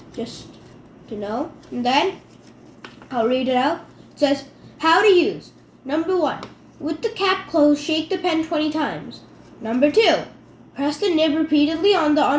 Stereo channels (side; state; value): both; identical; correlation 1.00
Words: just to know. And then I'll read it out. It says, how to use. Number 1, with the cap closed, shake the pen 20 times. Number 2, press the nib repeatedly on the